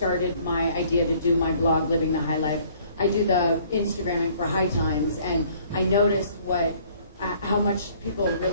my idea to do my blog, Living the High Life. I do the Instagramming for High Times, and I noticed how much people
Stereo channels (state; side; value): inverted; both; correlation -0.58